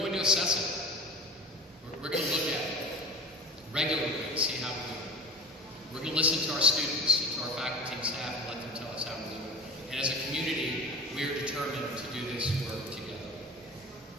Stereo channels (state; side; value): normal; both; correlation 0.36